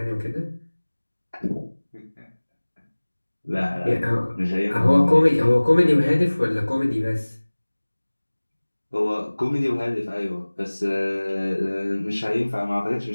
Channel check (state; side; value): inverted; both; correlation -1.00